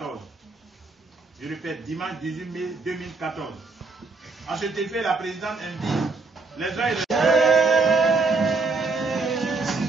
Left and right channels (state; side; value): quieter; left; 3.9 dB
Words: Je répète, dimanche 18 mai 2014. À cet effet, la présidente invite les uns et les